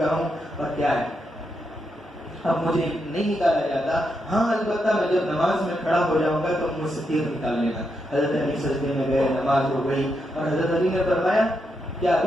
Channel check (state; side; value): normal; both; correlation 0.83